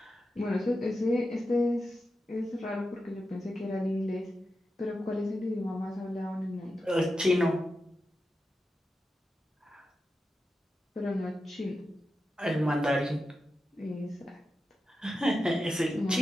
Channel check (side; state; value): both; normal; correlation 0.90